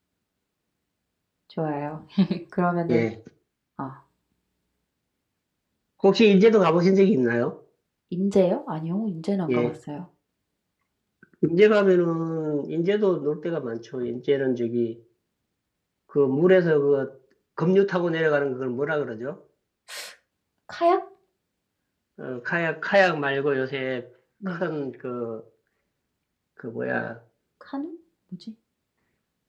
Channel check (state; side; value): identical; both; correlation 1.00